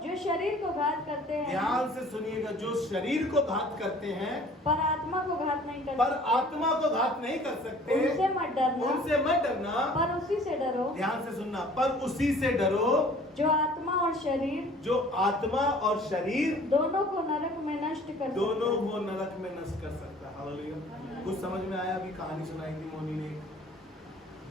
जो शरीर को घात करते हैं, ध्यान से सुनिएगा, जो शरीर को घात करते हैं पर आत्मा को घात नहीं कर पर सकते, आत्मा को घात नहीं कर सकते, उनसे मत डरना, उनसे मत डरना, पर उसी से डरो। ध्यान से सुनना, पर उसी से डरो जो आत्मा और शरीर, जो आत्मा और शरीर दोनों को नरक में नष्ट कर सकता है। दोनों को नरक में नष्ट कर सकता है। हालेलुया। कुछ समझ में आया? अभी कहानी सुनाई थी मोनी ने,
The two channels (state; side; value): normal; both; correlation 0.51